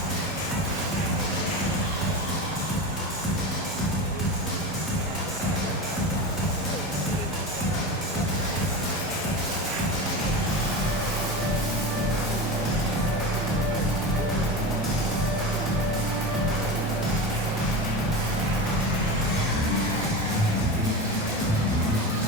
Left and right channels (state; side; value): normal; both; correlation 0.25